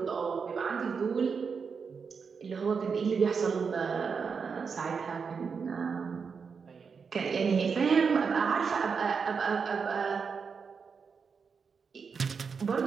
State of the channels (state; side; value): quieter; left; 5.7 dB